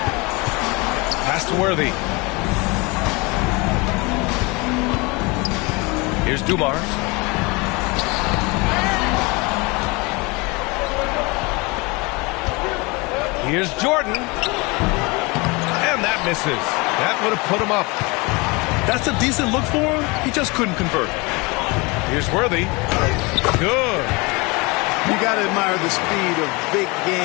Pass to Worthy. Here's Dumars. Here's Jordan. And that misses. That would have put him up. That's a decent look for him. He just couldn't convert. Here's Worthy. Good. You got to admire the speed of big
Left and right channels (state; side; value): quieter; right; 26.5 dB